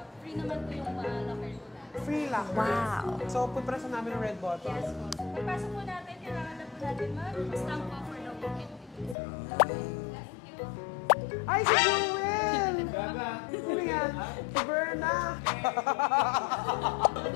free naman po yung locker po natin. Free locker. Wow. So, pupress na namin ng red button. Yes po. So, pagpasok po natin, kailangan na po natin mag-stamp po for the walk-in. Thank you. Ay, si Jewel! Sino yan? Si Berna.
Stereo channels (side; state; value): right; drops out; at 9.2 s